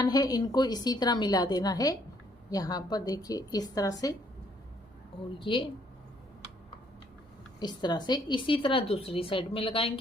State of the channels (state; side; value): normal; both; correlation 0.66